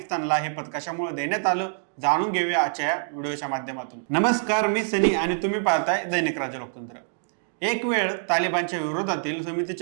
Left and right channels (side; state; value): left; silent; digital silence